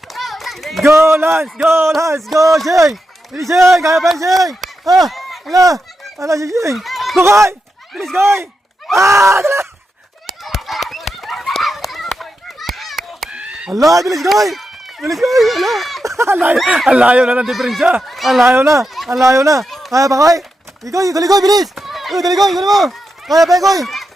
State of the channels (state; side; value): normal; both; correlation 0.87